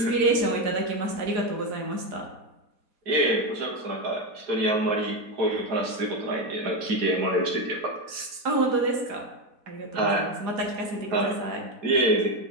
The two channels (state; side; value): late; left; 4.1 ms